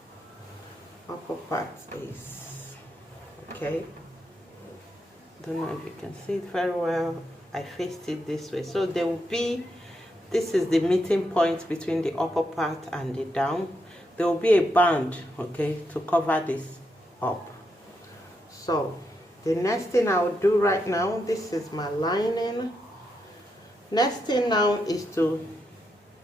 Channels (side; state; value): both; normal; correlation 0.82